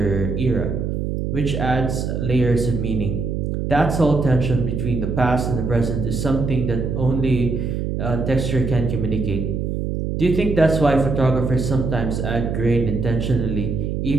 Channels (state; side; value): noise; right; hum, 2 dB below the sound